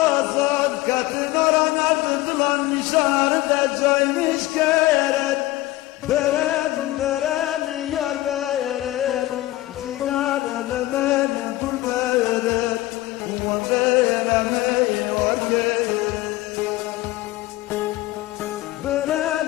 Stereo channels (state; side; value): quieter; right; 17.5 dB